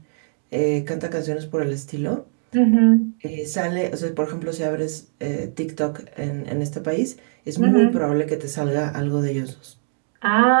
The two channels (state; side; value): silent; left; 64 dB below the other